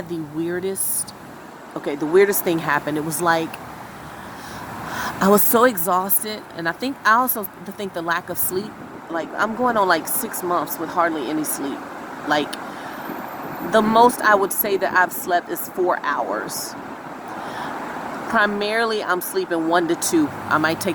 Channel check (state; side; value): identical; both; correlation 1.00